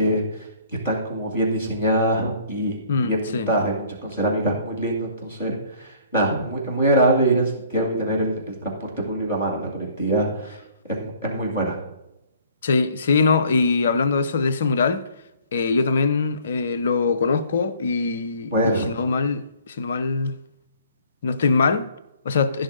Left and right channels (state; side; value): inverted; both; correlation -0.57